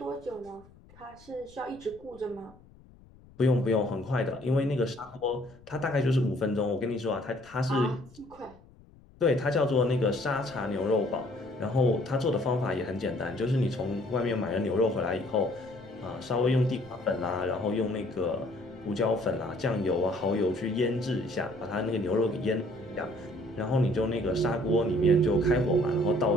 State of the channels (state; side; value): noise; left; rumble, 25 dB below the sound